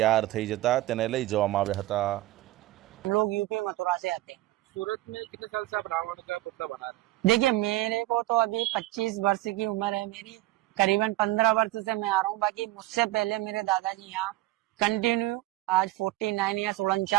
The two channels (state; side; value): quieter; left; 17.0 dB